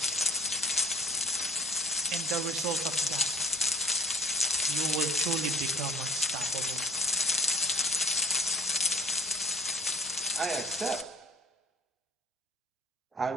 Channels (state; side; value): normal; both; correlation 0.51